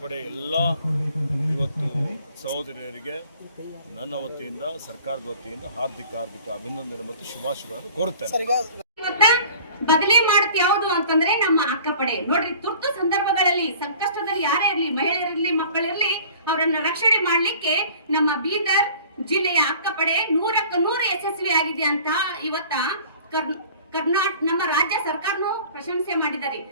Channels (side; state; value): both; inverted; correlation -0.48